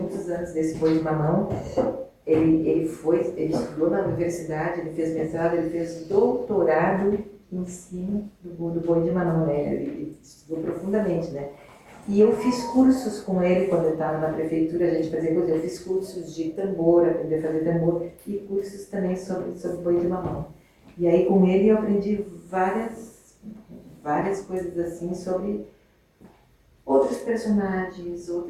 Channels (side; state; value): both; identical; correlation 1.00